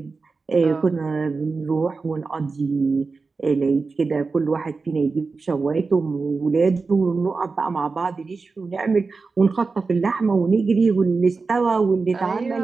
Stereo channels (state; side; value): quieter; left; 4.3 dB